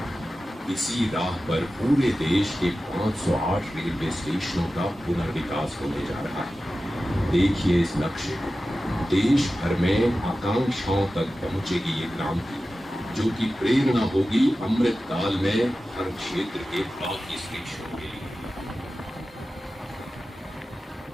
इसी राह पर पूरे देश के 508 रेलवे स्टेशनों का पुनर्विकास होने जा रहा है। देखिए इस नक्शे को, देश भर में आकांक्षाओं तक पहुंचेगी ये क्रांति, जो कि प्रेरणा होगी अमृत काल में हर क्षेत्र के बाकी स्टेशनों के लिए।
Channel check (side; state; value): both; normal; correlation 0.94